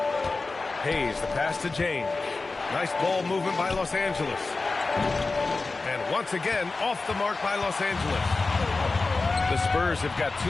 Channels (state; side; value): quieter; right; 3.7 dB